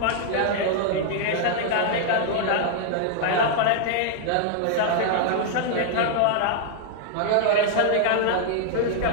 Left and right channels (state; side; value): different; both; correlation -0.01